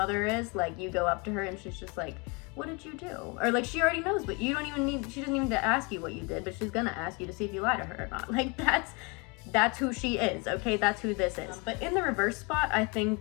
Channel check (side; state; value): right; quieter; 29.6 dB